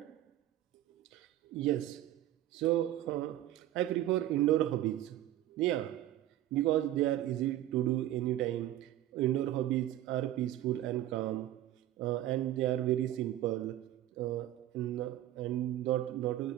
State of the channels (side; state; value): left; quieter; 13.6 dB